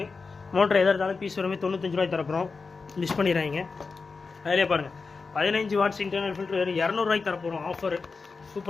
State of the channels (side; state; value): right; quieter; 4.5 dB